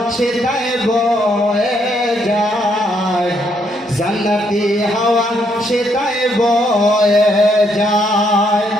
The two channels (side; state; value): both; normal; correlation 0.73